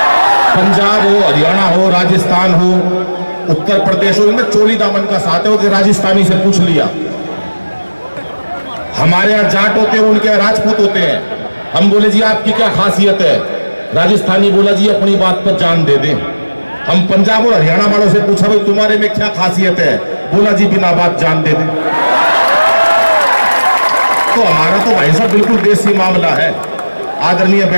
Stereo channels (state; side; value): inverted; both; correlation -1.00